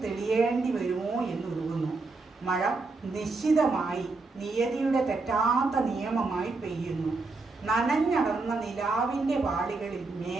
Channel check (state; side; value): quieter; left; 3.7 dB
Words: തെളിയേണ്ടി വരുമോ എന്നുരുകുന്നു. മഴ നിശ്ചിതമായി നിയതിയുടെ തെറ്റാത്ത നിയമമായി പെയ്യുന്നു. നനഞ്ഞടർന്ന നിലാവിൻ്റെ വാളികളിൽ